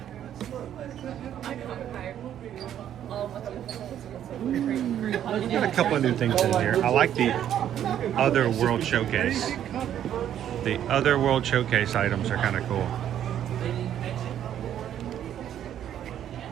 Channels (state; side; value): quieter; left; 10.5 dB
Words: Got a couple of new things in here. I like the Other World Showcase. The Other World Showcase items are kind of cool.